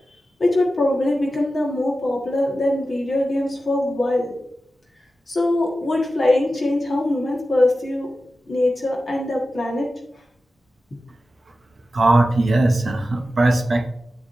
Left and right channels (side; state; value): both; normal; correlation 0.93